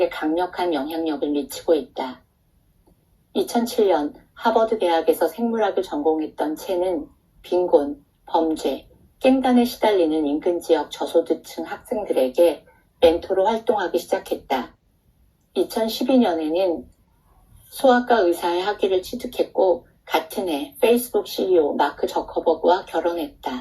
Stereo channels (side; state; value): both; identical; correlation 1.00